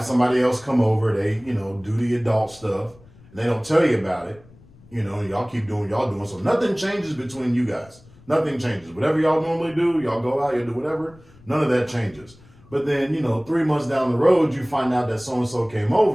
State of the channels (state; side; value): noise; left; rumble, 25 dB below the sound